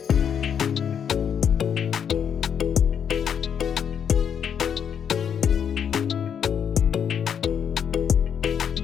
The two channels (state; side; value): quieter; right; 8.0 dB